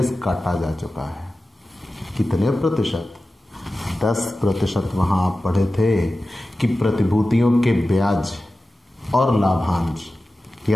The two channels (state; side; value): normal; both; correlation 0.95